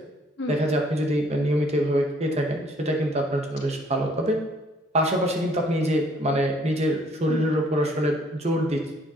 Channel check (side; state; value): both; normal; correlation 0.63